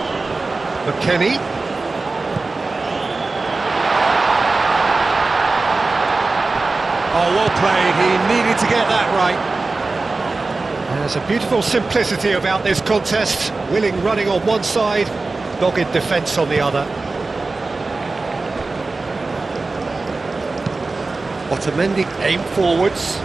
McKennie. Oh, well played. He needed to get that right. There's a beautiful simplicity about this contest. Willing running on one side, dogged defence on the other. Otamendi aim forwards.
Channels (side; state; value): left; quieter; 3.6 dB